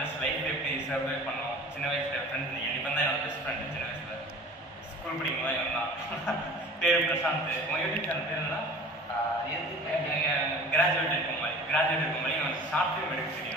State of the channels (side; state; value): both; normal; correlation 0.42